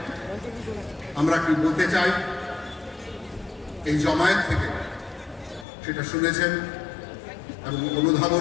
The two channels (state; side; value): drops out; right; at 5.7 s